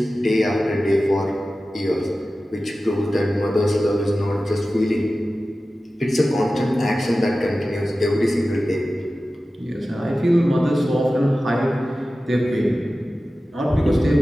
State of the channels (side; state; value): both; normal; correlation 0.95